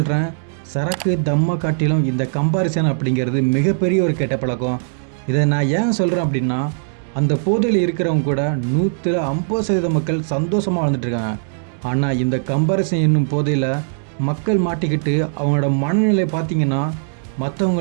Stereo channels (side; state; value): left; silent; 66 dB below the other